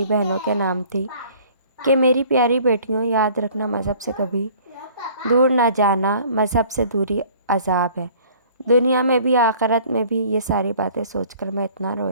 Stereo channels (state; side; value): inverted; both; correlation -0.52